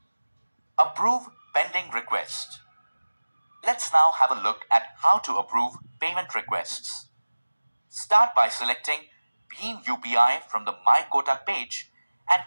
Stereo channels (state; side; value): inverted; both; correlation -1.00